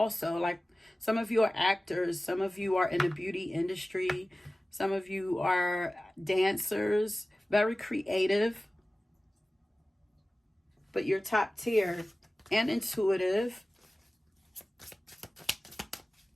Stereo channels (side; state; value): both; normal; correlation 0.97